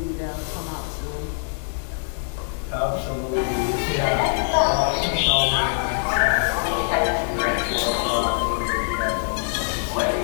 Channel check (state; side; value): silent; right; digital silence